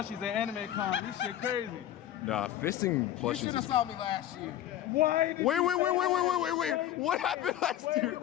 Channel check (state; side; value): quieter; right; 12.2 dB